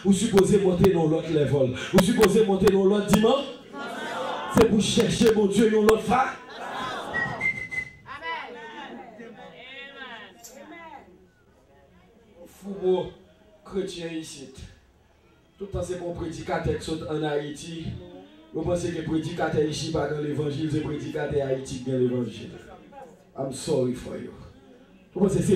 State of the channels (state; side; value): identical; both; correlation 1.00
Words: vous supposez monter dans l'autre level. Vous supposez monter dans l'autre dimension. C'est pour chercher mon Dieu dans l'autre phase. Fou chrétien ici. Tout le temps c'est pour prédicateur qui sont en Haïti. Vous pensez que prédicateur ici pas dans l'évangile, c'est prédicateur Haïti qui dans l'évangile. I'm sorry for you. Vous pensez que